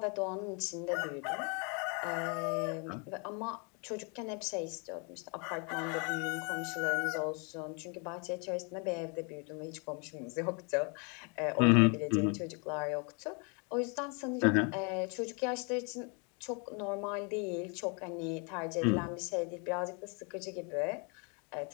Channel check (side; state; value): right; quieter; 34.8 dB